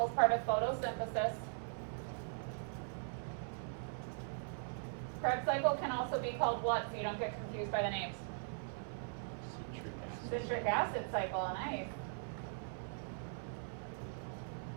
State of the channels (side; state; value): left; silent; 51 dB below the other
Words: is part of photosynthesis. Krebs cycle can also be called what, so you don't get confused by the names? Citric acid. Citric acid cycle, nice.